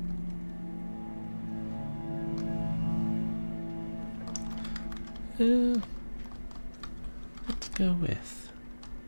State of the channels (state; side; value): inverted; both; correlation -1.00